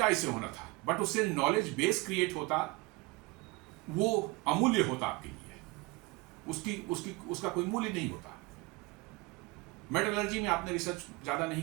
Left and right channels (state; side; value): quieter; left; 23.1 dB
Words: इससे होना था? बट उससे नॉलेज बेस क्रिएट होता, वो अमूल्य होता आपके लिए, उसका कोई मूल्य नहीं होता। मेटलर्जी में आपने रिसर्च ज़्यादा नहीं